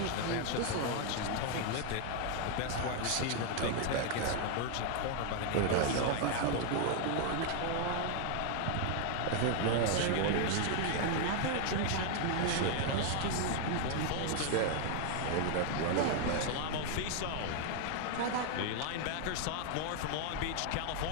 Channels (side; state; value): both; different; correlation 0.00